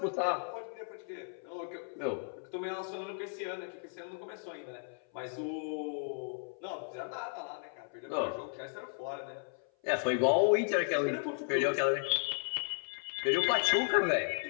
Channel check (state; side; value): silent; right; 55 dB below the other